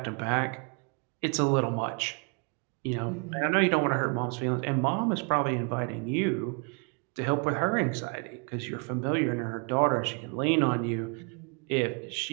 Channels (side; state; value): left; quieter; 35.8 dB